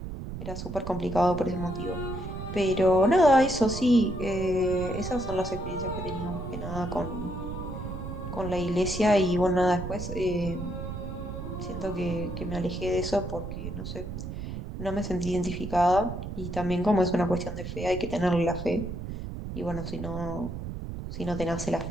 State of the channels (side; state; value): right; noise; rumble, 7 dB below the sound